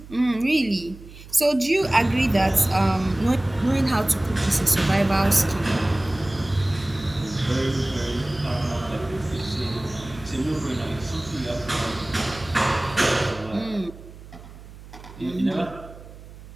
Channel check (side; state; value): right; noise; hum, 17 dB below the sound